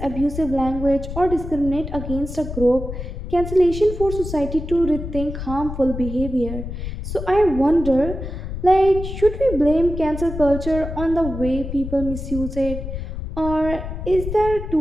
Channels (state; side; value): noise; left; rumble, 7 dB below the sound